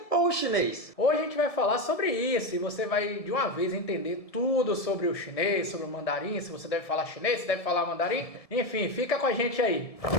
ou o chinês? Hoje a gente vai falar sobre isso e você vai de uma vez entender tudo sobre o chinês, sobre o mandarim, se você deve falar chinês, se deve falar mandarim. Enfim, fica com a gente aí.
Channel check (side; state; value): right; late; 1.7 ms